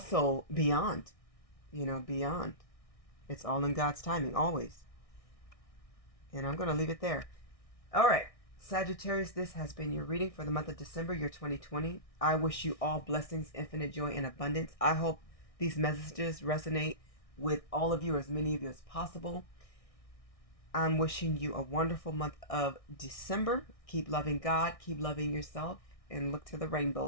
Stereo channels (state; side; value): late; right; 1.6 ms